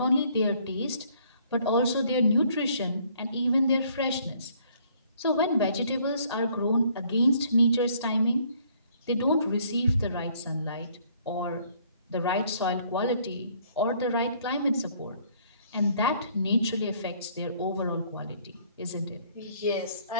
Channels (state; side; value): inverted; both; correlation -0.62